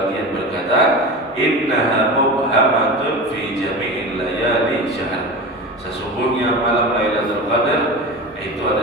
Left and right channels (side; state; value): both; normal; correlation 0.28